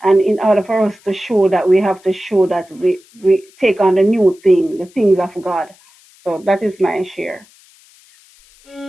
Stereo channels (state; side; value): noise; left; hiss, 29 dB below the sound